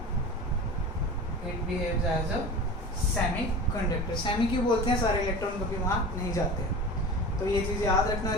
Semi क्यों बोलते हैं? सारे electron कभी वहाँ नहीं जाते हैं। तो ये चीज़ याद रखना। और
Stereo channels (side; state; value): both; normal; correlation 0.34